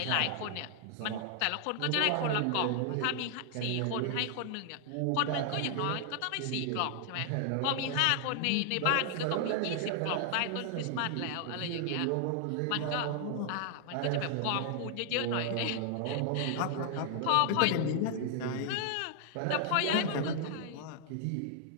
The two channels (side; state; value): both; different; correlation 0.00